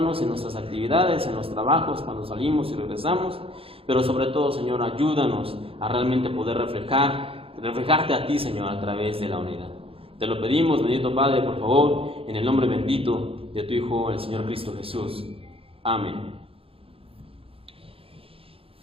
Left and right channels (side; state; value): left; late; 0.27 ms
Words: en nuestras actividades, en los trabajos, cuando salimos y regresamos, pero sobre todo, Señor, ayúdanos a realmente poder reflejarte a ti, Señor, a través de la unidad. Te lo pedimos, bendito Padre, por favor, en el nombre bendito de tu Hijo, el Señor Cristo Jesús. Amén.